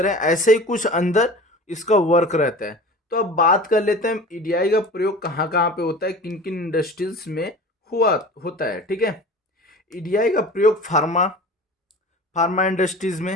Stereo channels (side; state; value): both; normal; correlation 0.38